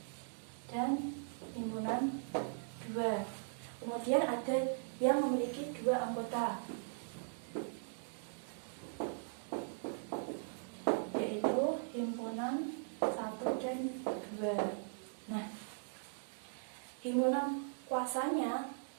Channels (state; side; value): silent; left; digital silence